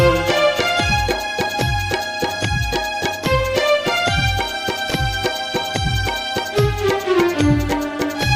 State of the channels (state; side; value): identical; both; correlation 1.00